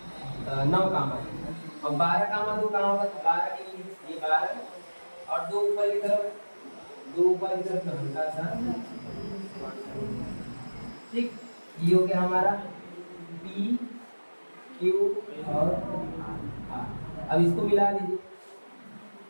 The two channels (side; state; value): both; inverted; correlation -1.00